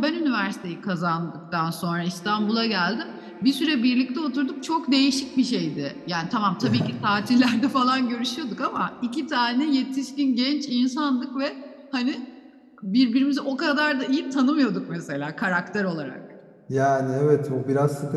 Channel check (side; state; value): both; identical; correlation 1.00